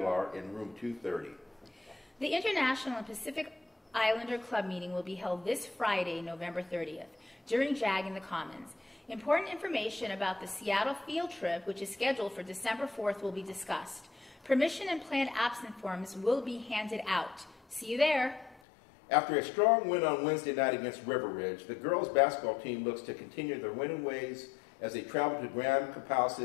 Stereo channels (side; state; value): right; drops out; at 18.6 s